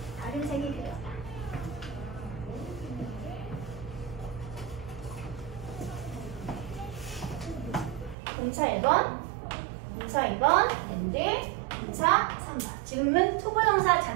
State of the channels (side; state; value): left; drops out; at 8.2 s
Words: 다른 색이 필요하다. 동사 1번, 동사 2번, and 동사 3번. 지금은 투부정사